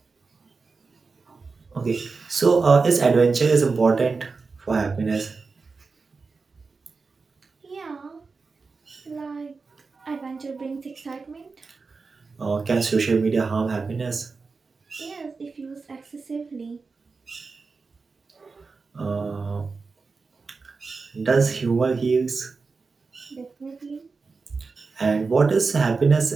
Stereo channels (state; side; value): quieter; left; 4.4 dB